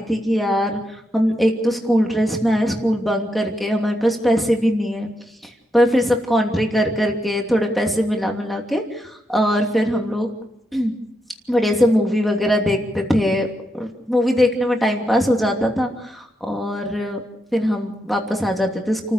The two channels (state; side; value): normal; both; correlation 0.82